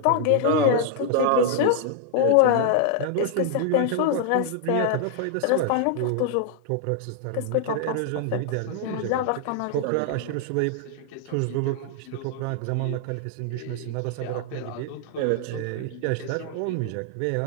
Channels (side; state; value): both; different; correlation 0.00